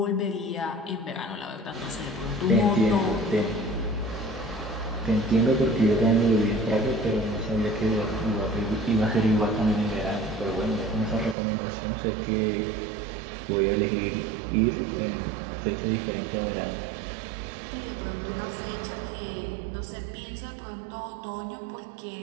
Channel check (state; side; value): drops out; left; at 11.4 s